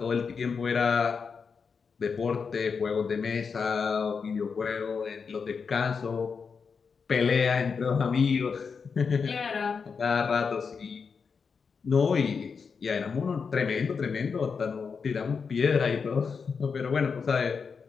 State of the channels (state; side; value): quieter; right; 5.6 dB